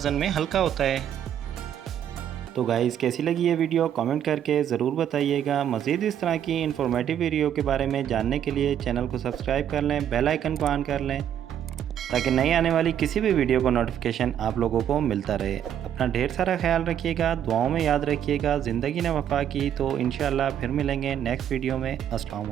में हल्का होता है। तो गाइस कैसी लगी ये वीडियो कमेंट करके ज़रूर बताइएगा। मज़ीद इस तरह की इन्फॉर्मेटिव वीडियो के बारे में जानने के लिए चैनल को सब्सक्राइब कर लें, बेल आइकन को ऑन कर लें ताकि नई आने वाली किसी भी वीडियो को नोटिफिकेशन आप लोगों को मिलता रहे। अपना ढेर सारा ख्याल रखिएगा, दुआओं में याद रखिएगा। ज़िंदगी ने वफ़ा की तो इंशाअल्लाह फिर मिलेंगे नेक्स्ट वीडियो में। अस्सलाम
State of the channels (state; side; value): quieter; left; 9.8 dB